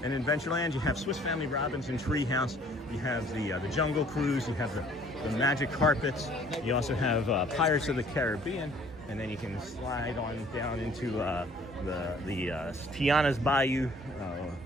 In Adventureland, you have Swiss Family Robinson Treehouse, you have the Jungle Cruise, you have the Magic Carpets, you also have Pirates of the Caribbean, and then you can slide on down into the Tiana's Bayou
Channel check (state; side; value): normal; both; correlation 0.56